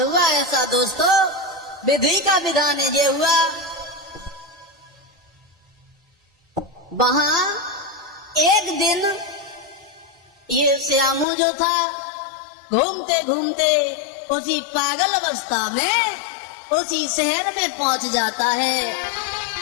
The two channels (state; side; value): drops out; right; at 11.2 s